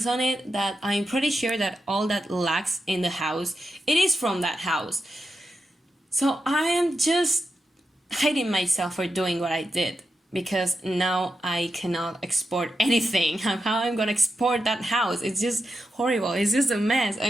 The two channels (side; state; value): both; normal; correlation 0.88